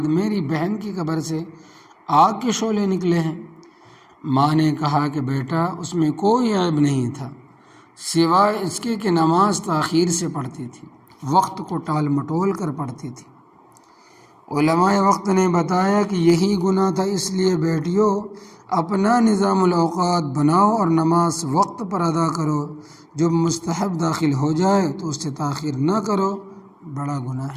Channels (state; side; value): identical; both; correlation 1.00